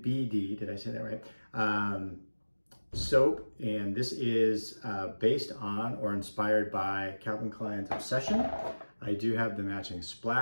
did I say that right? Soap. And this is based on or inspired by Calvin Klein's Obsession. I do have the matching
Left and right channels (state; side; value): inverted; both; correlation -1.00